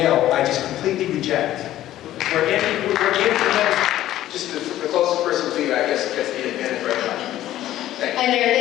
I just completely reject. We're anti-men. Just the closest person to you, I guess, gets the advantage right now. Thank you. Hi there,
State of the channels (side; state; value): right; quieter; 13.6 dB